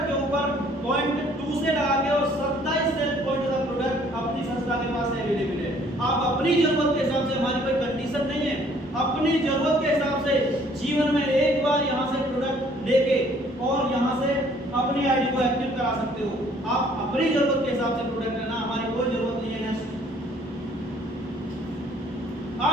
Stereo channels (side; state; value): both; normal; correlation 0.59